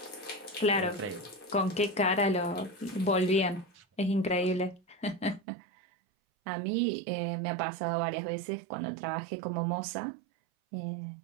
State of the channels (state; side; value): drops out; left; at 5.4 s